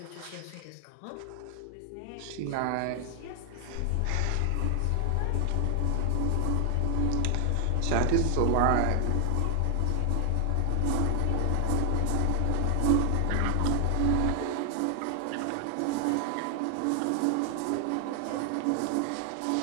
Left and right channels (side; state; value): both; different; correlation 0.00